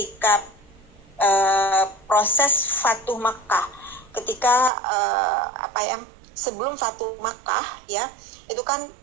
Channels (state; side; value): drops out; left; at 4.7 s